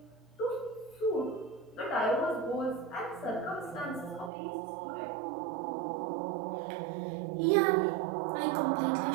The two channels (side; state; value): left; drops out; at 4.3 s